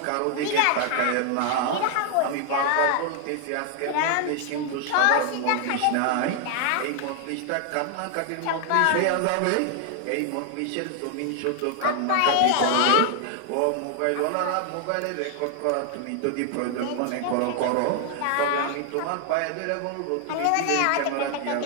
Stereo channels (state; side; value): different; both; correlation 0.00